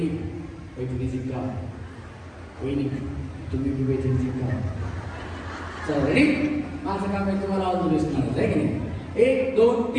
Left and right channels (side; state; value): both; identical; correlation 1.00